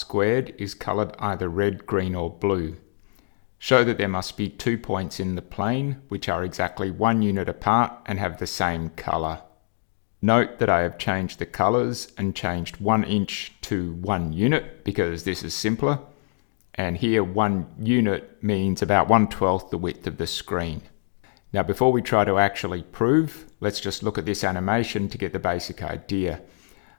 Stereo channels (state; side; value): silent; right; digital silence